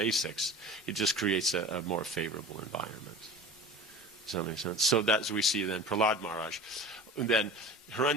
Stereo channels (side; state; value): both; normal; correlation 0.37